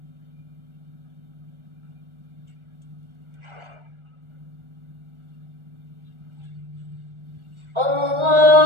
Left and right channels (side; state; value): left; late; 1.4 ms